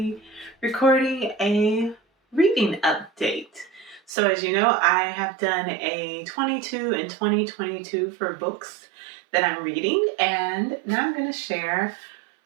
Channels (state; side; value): drops out; left; at 4.1 s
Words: recording a reading update. So as you know, I have done a 22 and 2022 for books that I'm reading, and now I'm going to share.